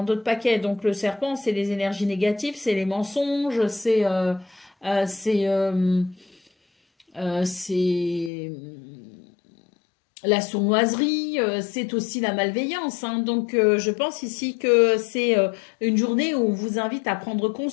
d'autres paquets. Donc le serpent, c'est les énergies négatives, c'est les mensonges, c'est la sournoiserie, c'est aussi la malveillance. Hein. Donc, je pense ici que c'est une journée où on vous invite à prendre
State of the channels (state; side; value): drops out; right; at 8.3 s